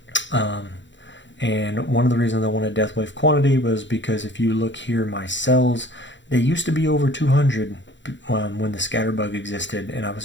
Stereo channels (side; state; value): right; late; 0.54 ms